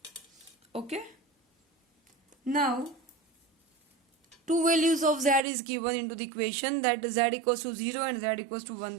Okay, now two values of z is given into the equation, that z equals to 0 and z equals to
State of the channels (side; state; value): left; drops out; at 5.4 s